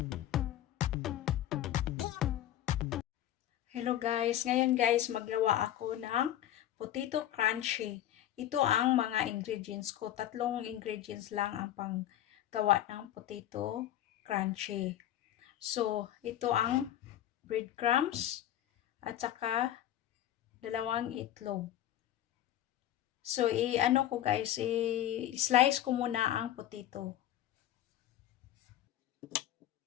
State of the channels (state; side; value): quieter; right; 12.4 dB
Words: Hello guys, ngayon guys maggawa ako ng potato crunchy. Ito ang mga ingredients ko. 3 ingredients lang ang panggawa ng potato crunchy. So, ito ang breadcrumbs at saka 2 itlog. So, i-ano ko guys, i-slice ko muna ang potato.